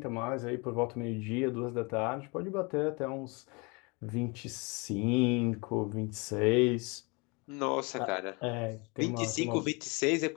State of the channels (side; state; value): right; quieter; 29.2 dB